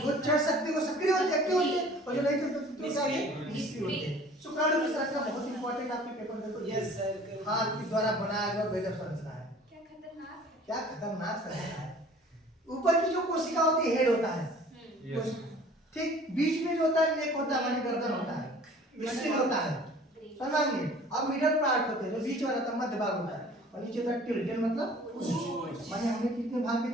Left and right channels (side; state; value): both; normal; correlation 0.49